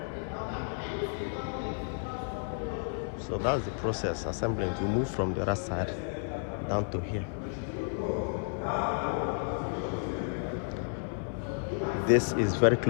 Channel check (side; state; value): right; silent; 57 dB below the other